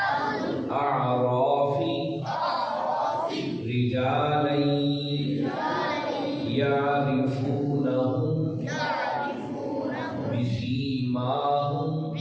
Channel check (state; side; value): identical; both; correlation 1.00